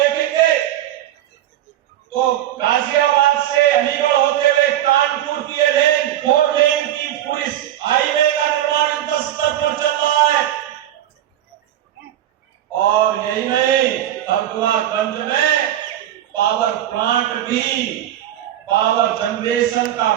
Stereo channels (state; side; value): quieter; left; 12.2 dB